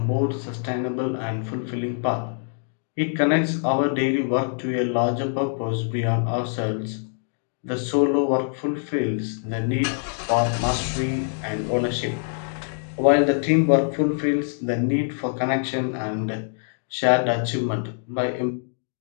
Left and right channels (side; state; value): right; silent; digital silence